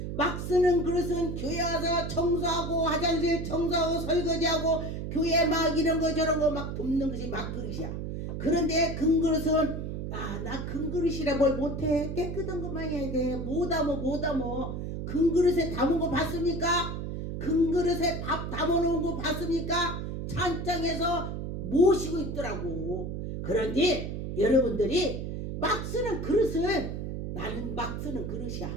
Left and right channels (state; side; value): noise; right; hum, 5 dB below the sound